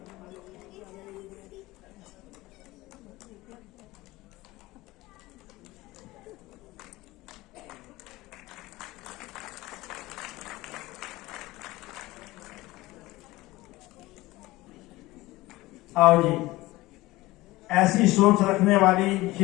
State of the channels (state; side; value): quieter; right; 19.2 dB